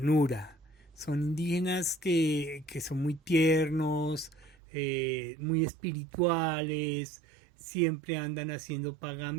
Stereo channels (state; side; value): drops out; left; at 4.5 s